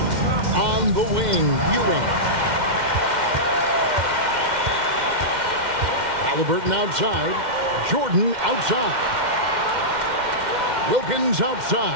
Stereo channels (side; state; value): left; late; 2.1 ms